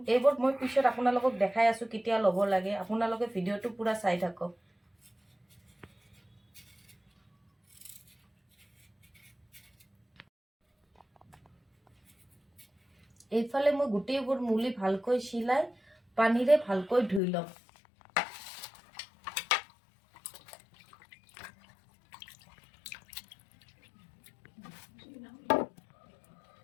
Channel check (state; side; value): drops out; right; at 17.2 s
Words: এইবোৰ মই পিছত আপোনালোকক দেখাই আছোঁ কেতিয়া ল'ব লাগে, আপোনালোকে ভিডিঅ'টো পুৰা চাই থাকক। এইফালে মই গোটেইবোৰ মুলি ভালকৈ চিলাই পানীৰে ভালকৈ ধুই ল'ম।